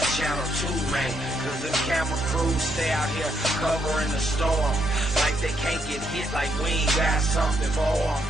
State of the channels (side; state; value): both; normal; correlation 0.75